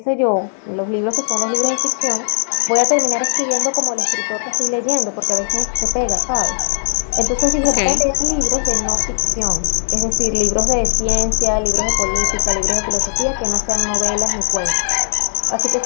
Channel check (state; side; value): silent; right; 65 dB below the other